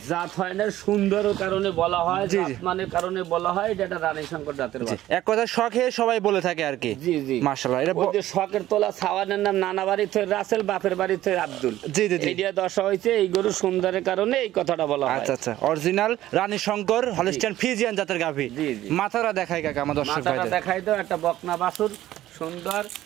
জাত হয় না, সুন্দর কারণে বলা হয়, জাতমানের কারণে বলা হয় এটা একটা রানী শঙ্কর জাতের বাচ্চা। এক কথা শখে সবাই বলে থাকে আর কি। জি জি মাশাআল্লাহ। এটা যে শখের তোলা ছাওয়ানের নাম নানা বাড়ি থেকে রাসেল, বাপের বাড়ি থেকে আব্দুল। জি জি জি। এইটা দশা হয়েছে এই গরু সুন্দরের কারণে এই কথাটা বলা হয়। আচ্ছা আচ্ছা, অরিজিনাল রানী শঙ্কর হলস্টাইন ফ্রিজিয়ান জাতের গাভী। জি জি। মাথাটা দেখাই কাকা আমার দর্শক ভাইদের। মাথাটা দেখাই দাও, একটা বকনা বাছুর সুন্দর।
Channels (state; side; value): quieter; left; 14.2 dB